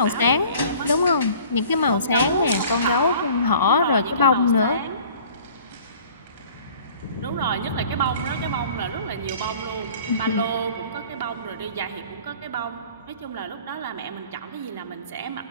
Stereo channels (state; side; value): inverted; both; correlation -0.49